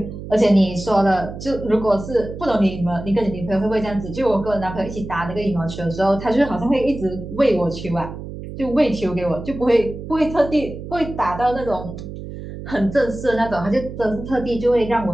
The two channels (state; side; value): noise; right; hum, 10 dB below the sound